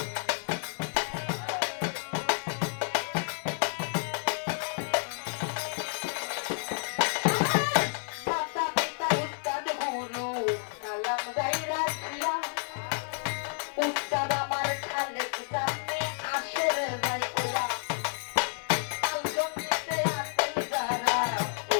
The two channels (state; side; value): silent; right; 58 dB below the other